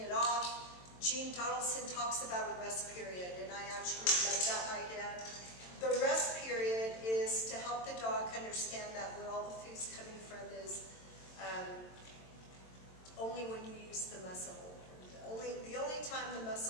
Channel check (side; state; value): right; late; 22 ms